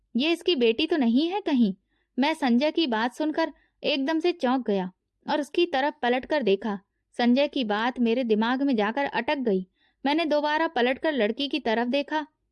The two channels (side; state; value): both; identical; correlation 1.00